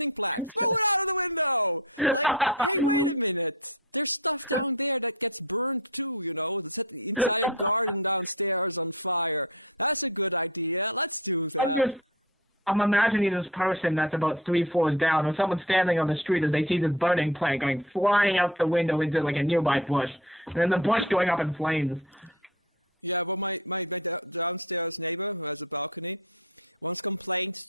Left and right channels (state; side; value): normal; both; correlation 0.31